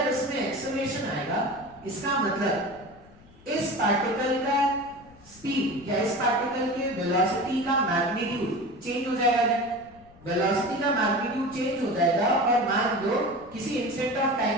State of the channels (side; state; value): left; noise; rumble, 25 dB below the sound